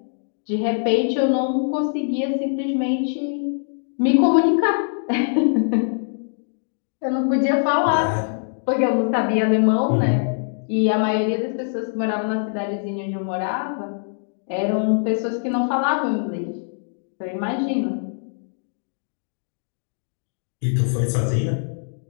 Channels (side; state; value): right; silent; digital silence